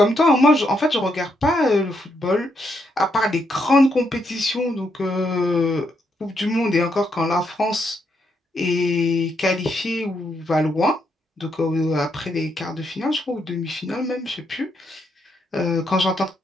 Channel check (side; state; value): both; normal; correlation 0.78